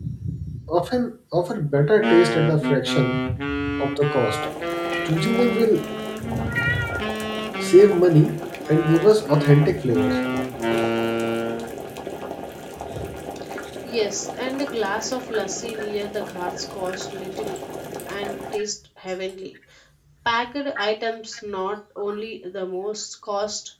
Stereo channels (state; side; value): identical; both; correlation 1.00